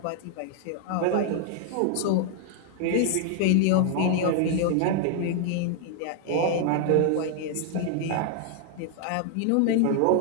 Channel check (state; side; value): different; both; correlation 0.00